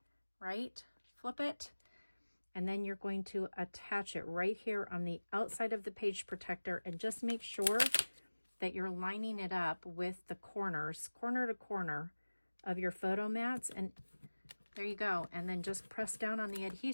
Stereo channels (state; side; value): inverted; both; correlation -1.00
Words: right? Flip it. And then you're going to attach it right here on the outside of the page protector, and just make sure that you're lining it up with the corners, corner to corner of your photo mats. And there you go. And then just press down on the